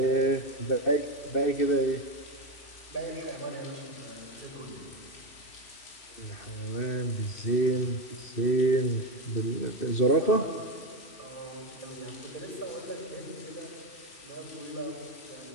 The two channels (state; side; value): late; right; 3.1 ms